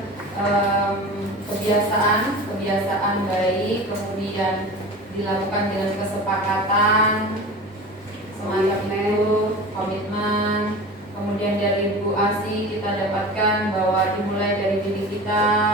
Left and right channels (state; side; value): normal; both; correlation 0.34